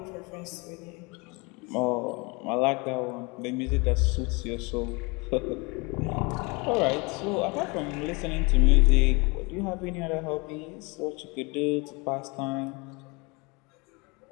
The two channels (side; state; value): right; quieter; 28.1 dB